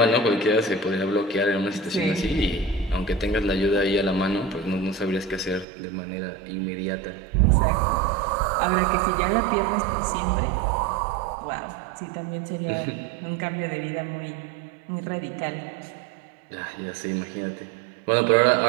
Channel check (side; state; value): left; drops out; at 5.7 s